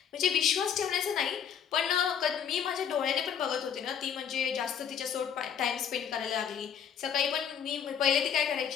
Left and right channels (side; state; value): right; quieter; 8.2 dB